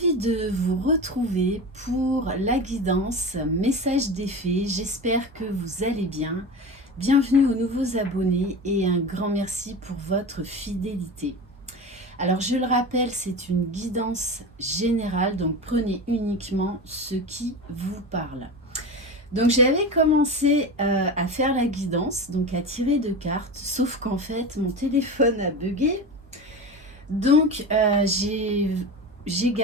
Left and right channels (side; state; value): both; normal; correlation 0.27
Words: de vous retrouver pour la guidance message des fées. J'espère que vous allez bien. Bienvenue aux nouveaux abonnés et un grand merci pour votre fidélité. Alors je le rappelle, c'est une guidance générale, donc prenez uniquement ce qui vous parle. Donc j'avais commencé à faire la guidance, donc à tirer de cartes, sauf qu'en fait mon téléphone a bugué. Donc j'ai